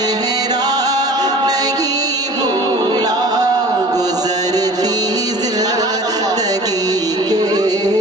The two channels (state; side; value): normal; both; correlation 0.43